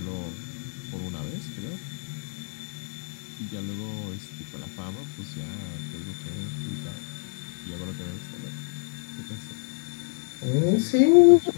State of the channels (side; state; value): right; silent; 59 dB below the other